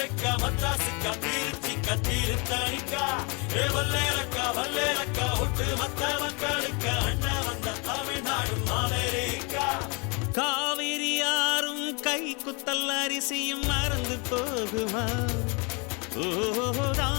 மத்ராசுக்கா திருச்சிக்கா திருத்தணிக்கா வல்லேலக்கா ஒட்டு மத்த மக்களுக்கா அண்ணா வந்த தமிழ்நாடு அமெரிக்கா காவிரி யாரும் கை குத்தல் அரிசியும் மறந்து போகுமா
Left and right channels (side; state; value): right; quieter; 31.6 dB